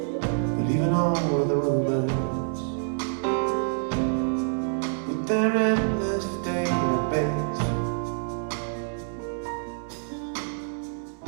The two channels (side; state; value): left; silent; 60 dB below the other